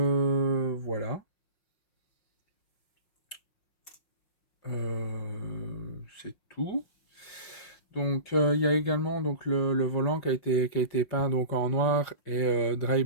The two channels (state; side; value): late; right; 5.5 ms